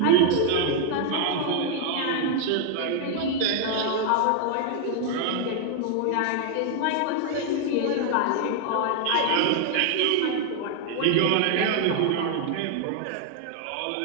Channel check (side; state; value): both; different; correlation 0.00